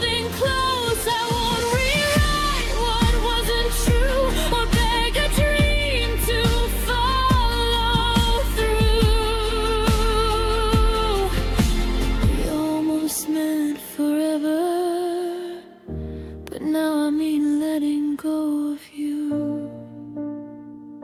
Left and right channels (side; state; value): both; identical; correlation 1.00